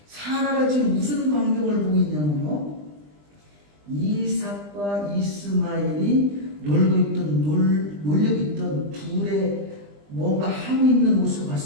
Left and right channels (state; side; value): late; left; 20 ms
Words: 사라가 지금 무슨 광경을 보고 있냐면요, 이삭과 이스마엘이 놀고 있던 둘의 뭔가 하고 있는 모습을